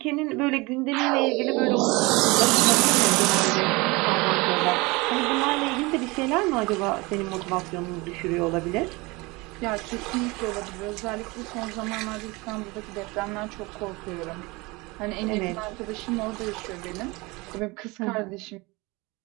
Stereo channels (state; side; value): quieter; left; 24.4 dB